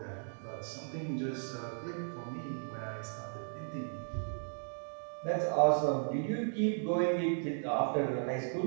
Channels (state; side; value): silent; left; digital silence